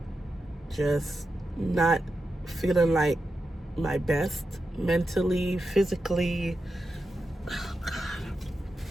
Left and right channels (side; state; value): both; normal; correlation 0.89